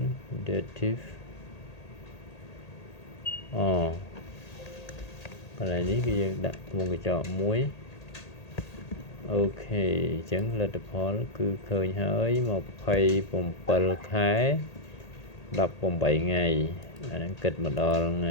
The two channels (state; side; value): late; right; 1.8 ms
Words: dative កន្លែងនេះគឺយើងដាក់វងកញ្ចក់មួយអូខេអញ្ចឹងលទ្ធផលគឺឃើញហើយ27ខែ18ថ្ងៃអាហ្នឹងគិតមកដល់ថ្ង